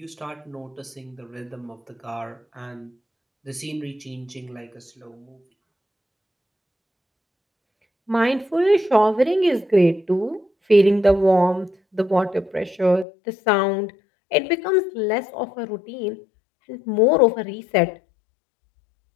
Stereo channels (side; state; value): right; drops out; at 13.1 s